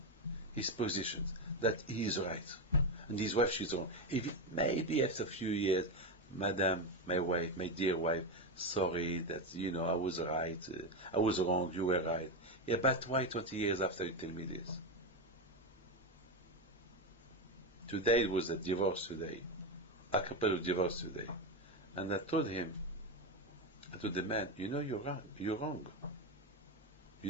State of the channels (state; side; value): normal; both; correlation 0.12